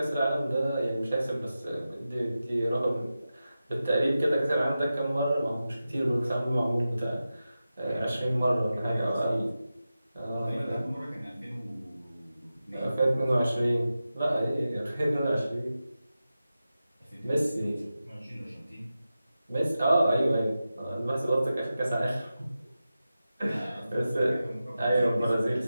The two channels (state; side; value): inverted; both; correlation -0.93